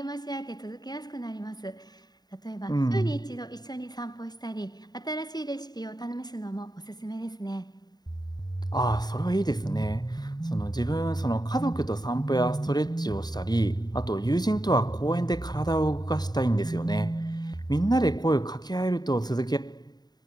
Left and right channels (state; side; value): late; right; 0.20 ms